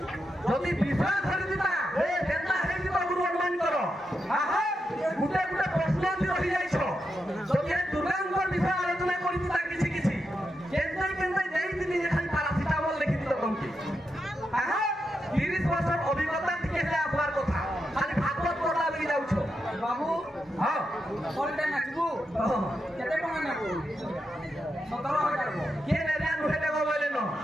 যদি বিষয় ধরে দিতা এ কেনতা হে দিবা গুরু অনুমান করো আহা গুটে গুটে প্রশ্ন দি রহি যাইছো যদি দুর্গাঙ্গর বিষয় আলোচনা করি দিতা কিছু কিছু কেনতাই কেনতাই দেই দিনি যে খালি প্যারাসিটামল লিখি দিত কমকি আহা 30 বছর অভিজ্ঞতা থেকে হেলে আসবার কথা খালি ভাগবত পড়া লাগি যাউছো বাবু হ্যাঁ কোনটা নাচবু কেতে টাকা নেব 17000 কে নেবে নুহে দেব বলে ন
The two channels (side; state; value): both; normal; correlation 0.86